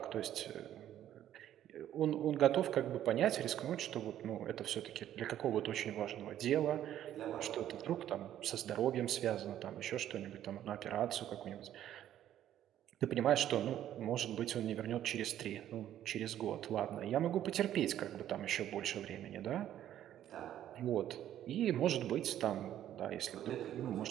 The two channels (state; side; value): quieter; left; 11.6 dB